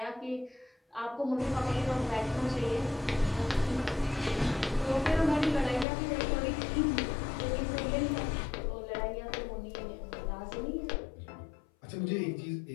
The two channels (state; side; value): drops out; right; at 5.9 s